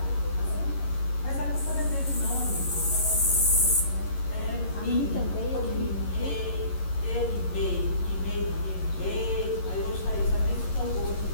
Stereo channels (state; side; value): late; right; 11 ms